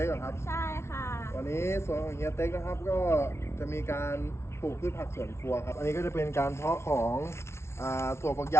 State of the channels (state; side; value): late; right; 0.13 ms